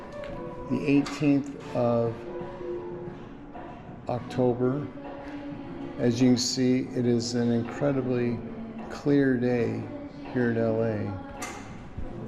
the 18th of October. As you can see, it is an incredibly clear day here at LA.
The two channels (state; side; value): identical; both; correlation 1.00